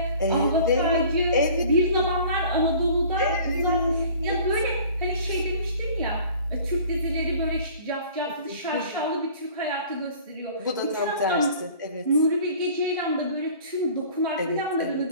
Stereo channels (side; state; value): both; inverted; correlation -0.48